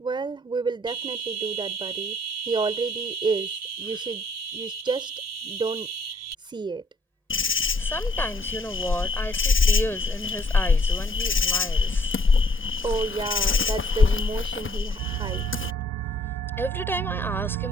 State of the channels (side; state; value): both; normal; correlation 0.61